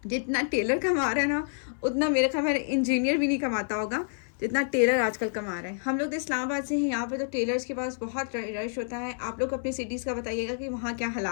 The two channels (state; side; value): silent; right; 59 dB below the other